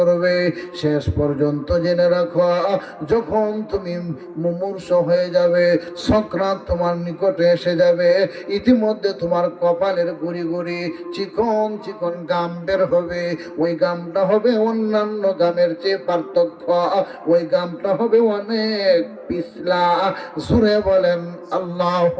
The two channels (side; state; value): both; identical; correlation 1.00